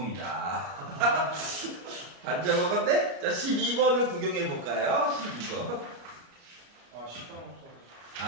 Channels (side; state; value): left; late; 34 ms